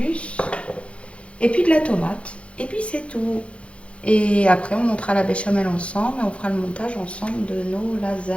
Et puis de la tomate. Et puis c'est tout. Et après, on montera la béchamel ensemble et on fera le montage ensemble de nos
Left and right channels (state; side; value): late; right; 0.061 ms